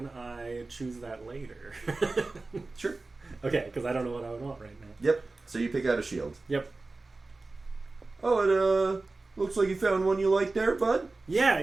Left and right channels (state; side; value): quieter; left; 3.4 dB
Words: I choose that later? Sure. Okay, because I don't know what I would want right now. Yep. So you pick out a shield. Yep. Oh, it looks like you found one you like there, bud.